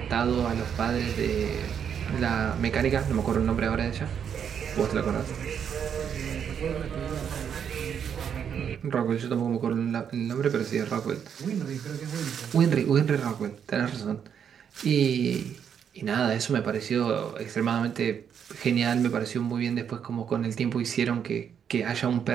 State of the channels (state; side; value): quieter; left; 8.0 dB